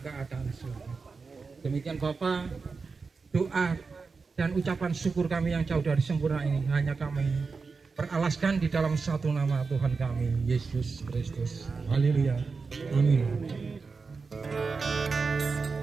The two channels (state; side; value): quieter; left; 4.6 dB